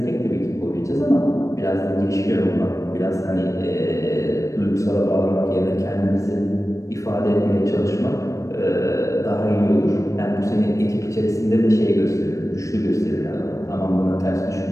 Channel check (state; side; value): late; right; 0.15 ms